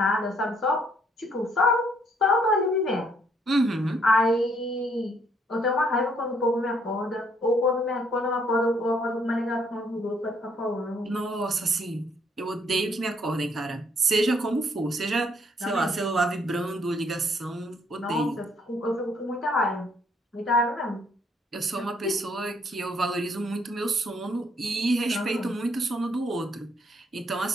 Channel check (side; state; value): both; normal; correlation 0.68